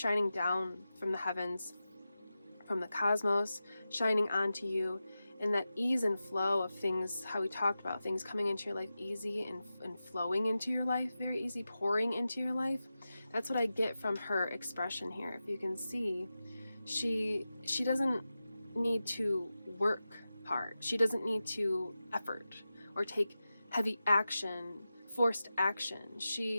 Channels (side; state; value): both; inverted; correlation -0.93